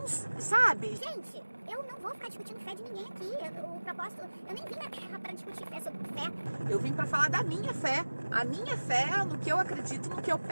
sabe? Gente, eu não vou ficar discutindo fé de ninguém aqui. O propósito, eu nem vim na Terra pra discutir fé sobre fé. Eu vim pra falar da minha fé. A minha fé no que eu acredito, no que eu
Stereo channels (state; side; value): inverted; both; correlation -1.00